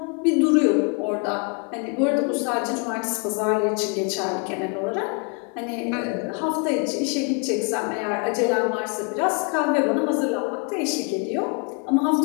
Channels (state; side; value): quieter; right; 32.9 dB